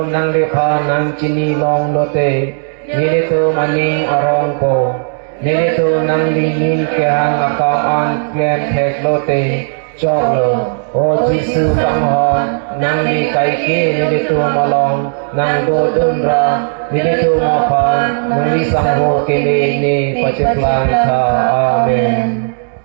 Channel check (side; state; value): left; silent; digital silence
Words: nang lipa nang cinilong lote nilito maning arongko nilito nang lingin kehang akam an klem tek lote choklo O Jesu kanghong nang li kaike nilito malong nang dodunra nilito mapan nang li sangho kele ni paceklan ka amen